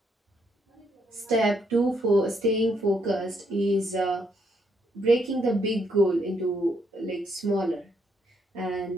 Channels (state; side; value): normal; both; correlation 0.74